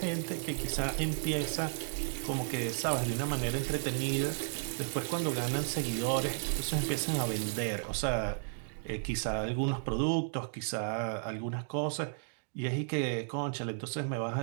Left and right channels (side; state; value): left; silent; digital silence